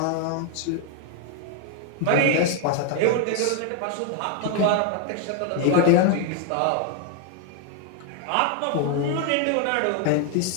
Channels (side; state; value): both; different; correlation 0.01